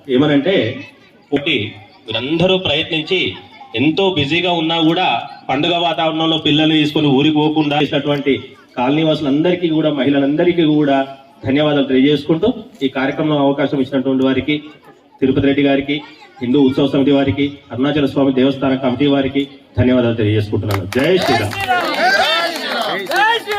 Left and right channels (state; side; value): identical; both; correlation 1.00